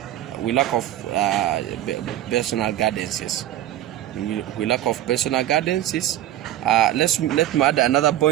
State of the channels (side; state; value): left; quieter; 13.0 dB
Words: We lack of personal gardens. We lack of personal gardens. Let me add another